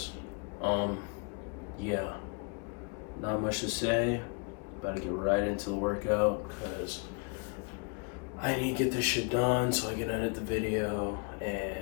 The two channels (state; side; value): quieter; right; 33.3 dB